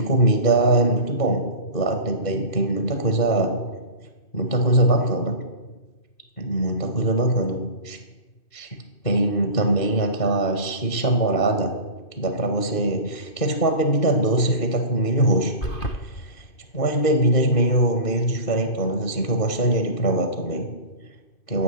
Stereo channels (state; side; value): late; right; 2.6 ms